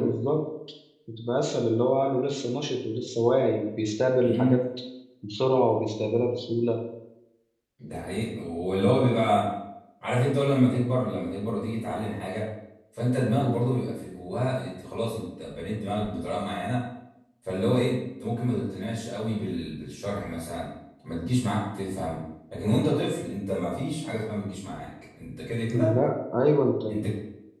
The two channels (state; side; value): identical; both; correlation 1.00